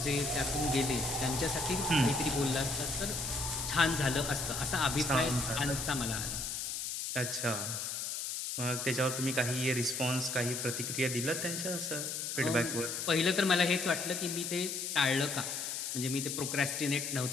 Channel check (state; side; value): noise; left; hiss, 3 dB below the sound